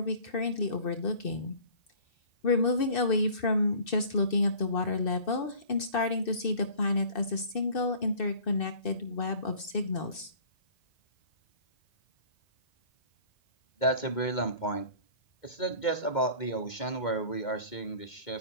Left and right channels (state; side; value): late; right; 2.6 ms